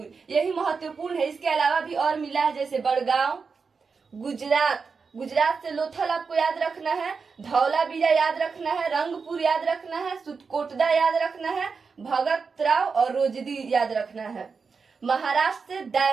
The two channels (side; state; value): left; quieter; 5.1 dB